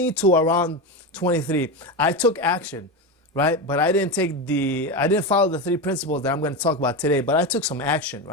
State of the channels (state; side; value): normal; both; correlation 0.17